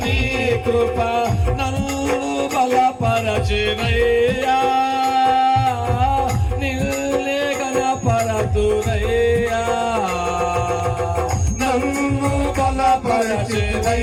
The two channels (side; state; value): both; identical; correlation 1.00